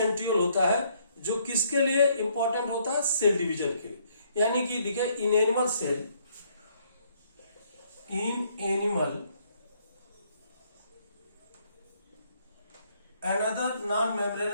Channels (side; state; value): both; inverted; correlation -0.68